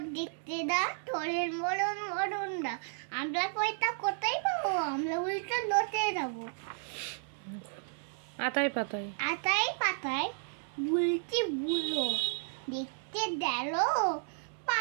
দেখতে দা তোরের মরণ মরণ দা। আমরা পয়সা কোথায় পাবো? আমরা উল্টো লোটে যাবো। আতাই পাতায় আতাই পাতায় বুলটি বুলো দেখতে গেল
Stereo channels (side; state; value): left; silent; 56 dB below the other